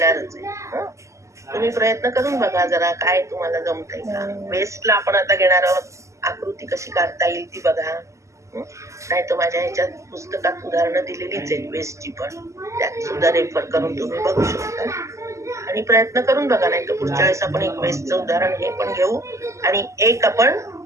आहे. हं? तुम्ही प्रयत्न करून बघा जरा काय तुम्हाला जमतंय का. वेस्टला आपण आता घेणार आहोत. आकृती कशी काढता येईल ती बघा. नाही तर माझ्या ह्याच्यात पुस्तकात उदाहरणं दिलेलीच आहेत वेस्टची पण, त्यात सुद्धा रेफर करून तुम्ही बघू शकता आणि प्रयत्न करून बघा. नाही तर पुढच्या वेळेस आपण एक वेस्टचं उदाहरण हे पण घेऊ आणि एक आपण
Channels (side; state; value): left; late; 0.14 ms